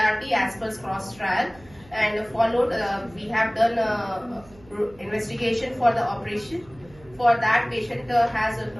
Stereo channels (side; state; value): right; noise; hum, 24 dB below the sound